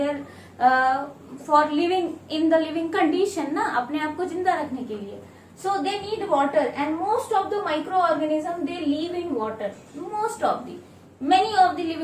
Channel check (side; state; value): both; identical; correlation 1.00